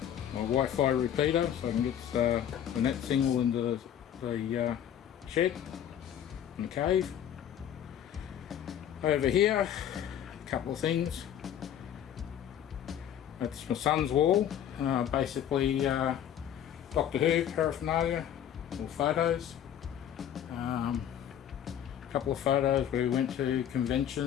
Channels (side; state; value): right; quieter; 10.0 dB